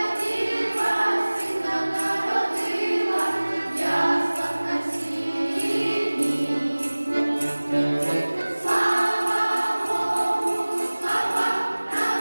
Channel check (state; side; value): inverted; both; correlation -1.00